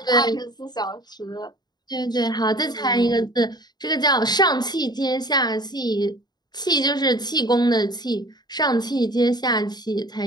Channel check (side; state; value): right; late; 0.20 ms